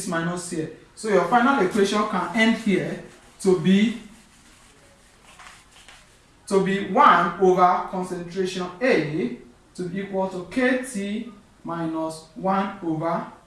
minus here. So your final equation can end here to be 1 over concentration A to be equal to KT minus 1 over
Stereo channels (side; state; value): both; identical; correlation 1.00